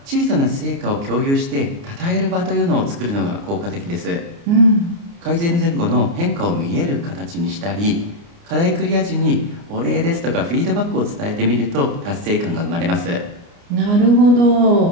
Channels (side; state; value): left; late; 29 ms